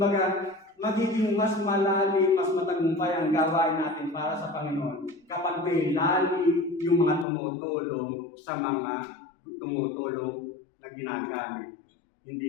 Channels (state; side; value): drops out; right; at 7.2 s